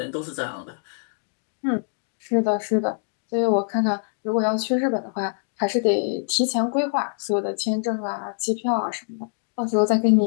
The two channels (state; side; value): silent; right; digital silence